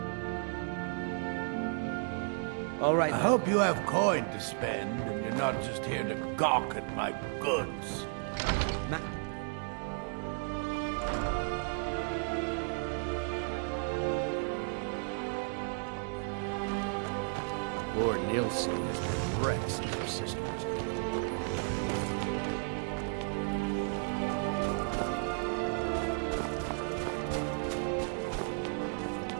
All right. I hope you have coin to spend, and you're not just here to gawk at my goods. Lord Nielsen has been wrecks in your sisters.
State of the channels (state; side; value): silent; left; 55 dB below the other